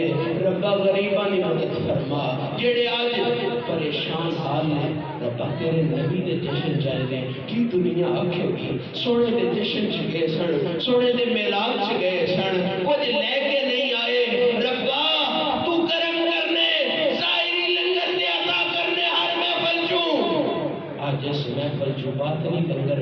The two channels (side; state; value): both; identical; correlation 1.00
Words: ربا غریبانی مدد فرما، جڑے آج پریشان حال نے ربا تیرے نبی دے جشن جائے دے کی دنیا آکھے گی، سونے دے جشن چگے سن، سونے دے میلاد چگے سن، کچھ لے کے نہیں آئے، ربا تو کرم کرنے ظاہری لنگر دے عطا کرنے ہر محفل چوں، آج اس محفل جو باطنی